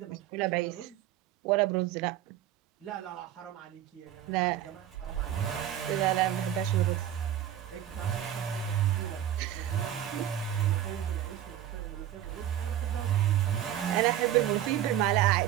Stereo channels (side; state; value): left; quieter; 11.5 dB